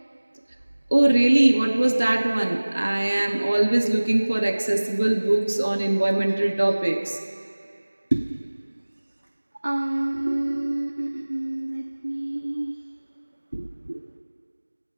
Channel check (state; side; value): inverted; both; correlation -1.00